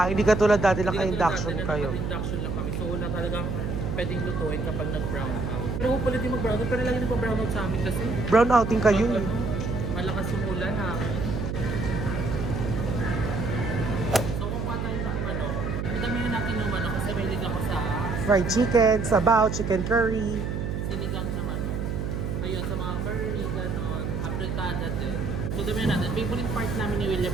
hindi katulad dati Hindi naka-induction katulad dati na kayo. naka-induction lang kami. So wala talagang pwedeng lutuin kapag nag-brown out. Pero hopefully di mag-brown out. Pero lagi nag-brown out sa amin kasi. Brown outing kayo. Malakas yung ulan ha. So kumuha tayo ng manok. Madamihan natin yung manok kasi may lig ako sa Fried chicken, sabaw, chicken curry. sinigang na manok. Ayun, sa mga curry, gano'n. Apritada din. So damihan natin. Favorite part namin ni William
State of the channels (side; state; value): right; noise; hum, 2 dB below the sound